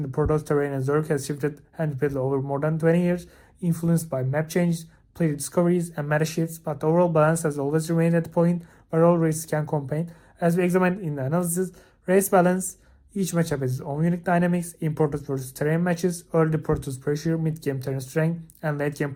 the Protoss, terrain, and Zerg has shifted and repeatedly over more than 20 years, influenced by map changes, player discoveries, and meta shifts, but the overall balance has always remained at the point where all races can compete. As we examined in the analysis, race balance, each matchup has its own unique dynamics, in Protoss versus terrain matches, early Protoss pressure, mid-game terrain strength, and late-game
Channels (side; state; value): both; identical; correlation 1.00